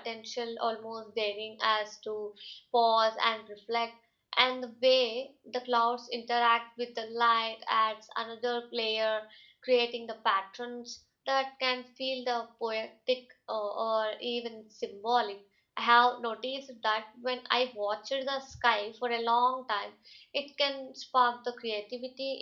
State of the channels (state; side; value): identical; both; correlation 1.00